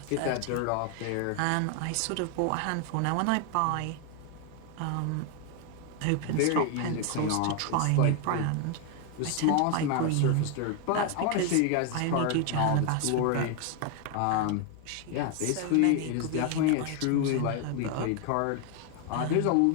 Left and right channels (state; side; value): different; both; correlation 0.01